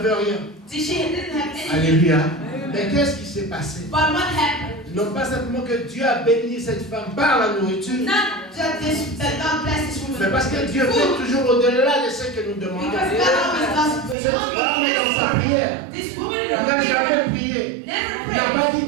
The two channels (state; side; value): drops out; left; at 14.2 s